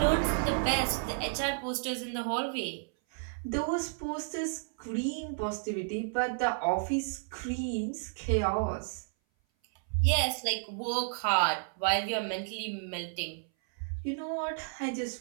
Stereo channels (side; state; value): left; silent; 56 dB below the other